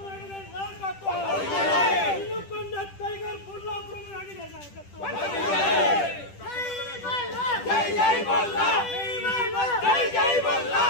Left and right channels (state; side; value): late; right; 10 ms